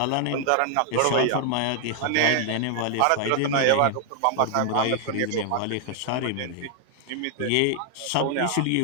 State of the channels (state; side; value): different; both; correlation 0.00